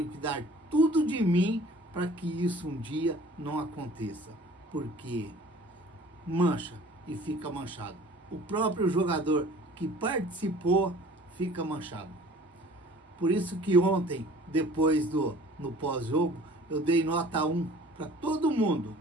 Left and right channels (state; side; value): normal; both; correlation 0.49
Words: que dar tudo de mim para que isso um dia não aconteça, porque mancha e fica manchado. O próprio jogador que participou fica manchado. Por isso que ontem, depois no pós-jogo, eu dei nota 1 para todo mundo